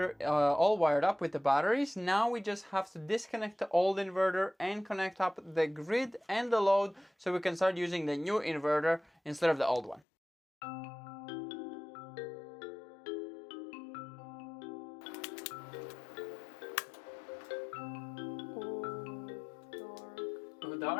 all wired up with the batteries. Now we just have to disconnect the old inverter and connect up the grid and the load so we can start using the new inverter instead of the old one. Go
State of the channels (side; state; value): right; drops out; at 10.0 s